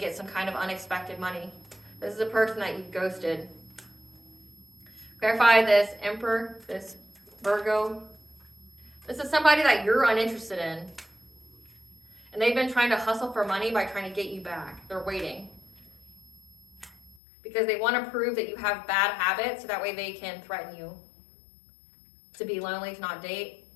some kind of unexpected money. This is a person that you've ghosted. Clarify this Emperor, this Virgo. This is somebody that you're uninterested in. And they've been trying to hustle for money by trying to get you back. They're waiting. Because they want to prove that you have bad habits so that way they can threaten you. To be lonely, to not date.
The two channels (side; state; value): right; drops out; at 17.2 s